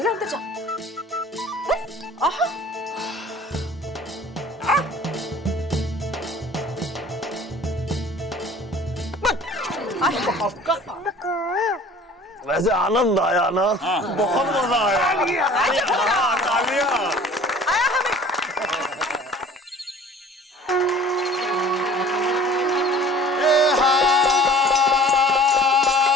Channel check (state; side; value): normal; both; correlation 0.48